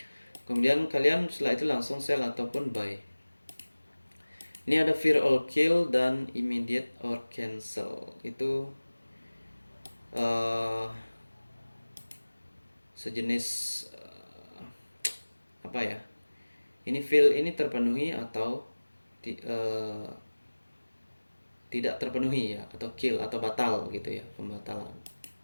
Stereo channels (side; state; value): both; inverted; correlation -1.00